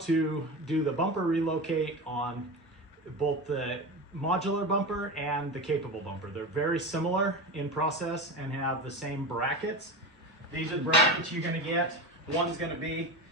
do the bumper relocate on both the modular bumper and the capable bumper. They're very similar in process and have the same brackets. These are the brackets you're going to get. One's going to be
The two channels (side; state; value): both; normal; correlation 0.25